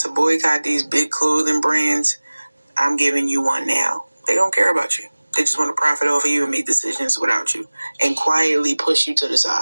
boycott these big clothing brands, I'm giving you one now. They don't care about you. They just want to profit off of you and make decisions without you and quietly push you to the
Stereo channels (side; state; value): both; inverted; correlation -1.00